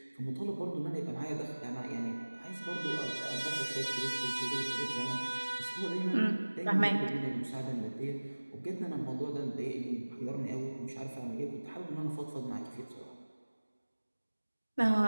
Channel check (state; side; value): inverted; both; correlation -1.00